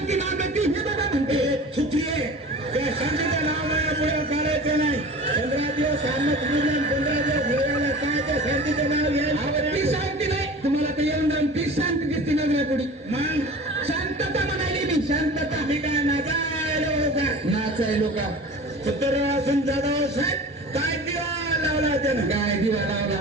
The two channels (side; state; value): both; normal; correlation 0.38